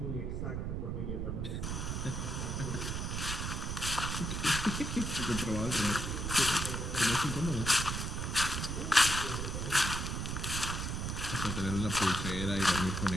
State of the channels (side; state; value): right; noise; rumble, 2 dB below the sound